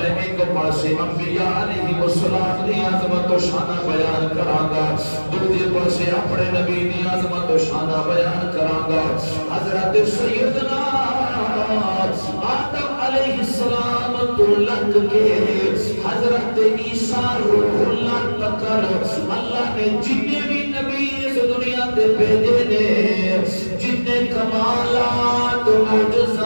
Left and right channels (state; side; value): inverted; both; correlation -1.00